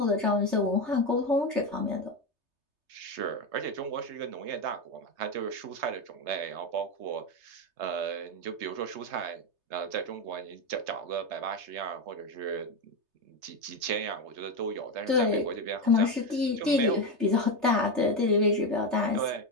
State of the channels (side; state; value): left; late; 3.3 ms